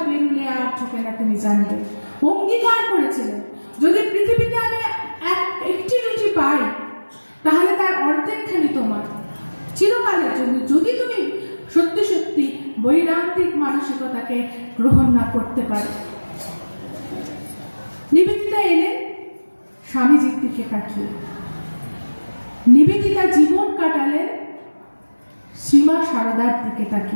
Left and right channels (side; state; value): both; inverted; correlation -1.00